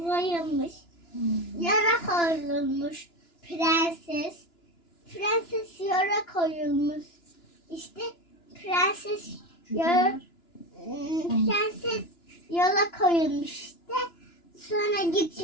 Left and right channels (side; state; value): right; late; 2.9 ms